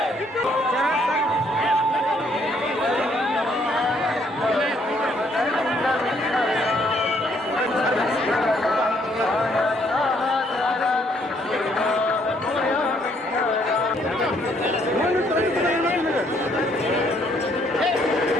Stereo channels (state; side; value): normal; both; correlation 0.68